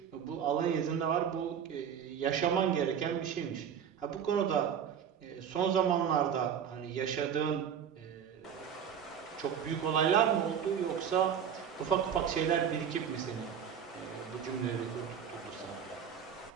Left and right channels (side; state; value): left; quieter; 8.2 dB